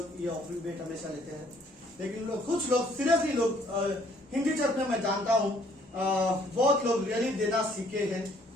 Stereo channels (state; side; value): normal; both; correlation 0.62